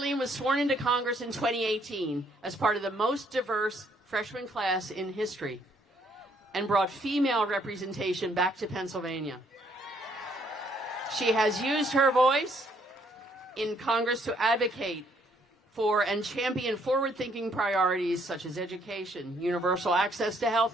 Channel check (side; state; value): both; normal; correlation 0.67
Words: was sworn into Congress in 2018 as part of the most diverse freshman class in history, and brought female representation back to Pennsylvania. She has used her voice in Congress to advocate for and champion forward-thinking priorities such as education, universal access to